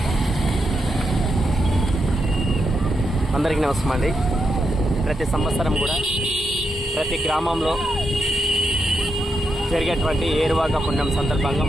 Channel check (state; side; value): normal; both; correlation 0.83